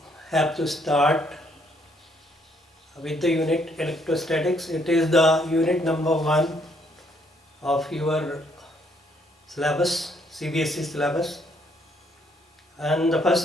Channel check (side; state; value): both; normal; correlation 0.69